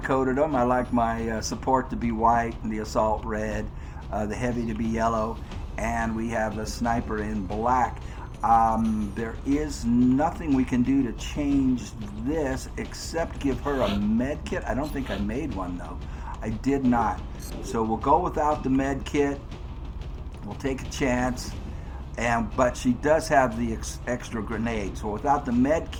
them. I like my support to be white and the assault red, the heavy to be yellow, and we have the sniper in black. There is nothing we can do to change this except give her a med kit. I don't think I made one though. I did not. So we'll go without the med kit. We'll take a chance. But she does have the extra grenade. So without the med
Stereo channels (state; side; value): identical; both; correlation 1.00